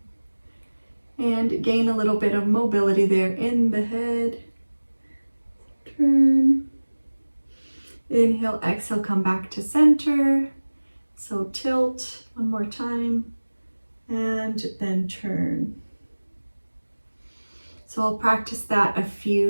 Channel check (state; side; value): inverted; both; correlation -1.00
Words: and gain a little bit of mobility there in the head. Turn. Inhale, exhale, come back to center. So tilt one more time and then turn. So I'll practice that a